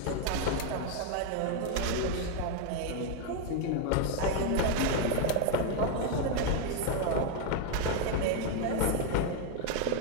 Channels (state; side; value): different; both; correlation 0.01